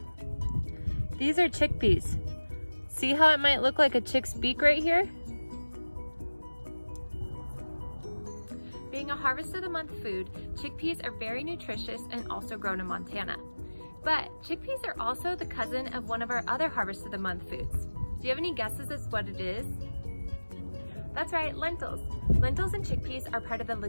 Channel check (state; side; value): inverted; both; correlation -1.00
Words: These are chickpeas. See how it might look like a chick's beak right here? Being a harvest of the month food, chickpeas are very nutritious and also grown in Montana. But chickpeas are also the cousin of one of our other harvest of the month foods. Do you have any guesses as to what it is? That's right, lentils. Lentils and chickpeas are part of the